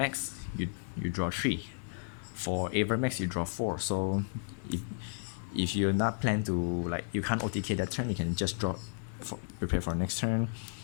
you draw 3. For Avermax, you draw 4. So if you're not plan to, like, you can't OTK that turn, you can just draw prepare for next turn.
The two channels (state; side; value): silent; right; digital silence